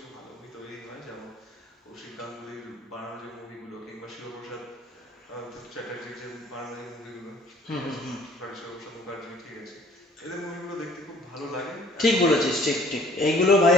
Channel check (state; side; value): normal; both; correlation 0.54